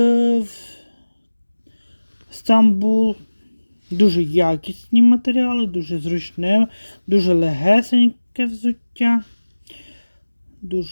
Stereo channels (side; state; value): both; inverted; correlation -1.00